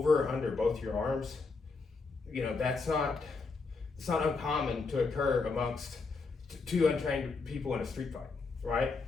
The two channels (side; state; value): right; quieter; 4.2 dB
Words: or under both your arms, you know, it's not uncommon to occur amongst two untrained people in a street fight, right?